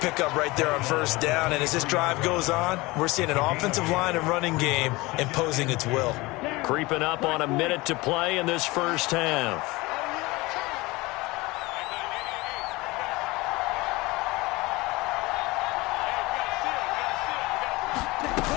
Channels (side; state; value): right; quieter; 22.2 dB